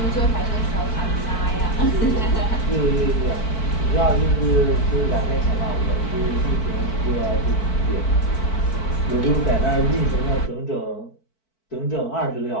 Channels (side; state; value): right; late; 4.5 ms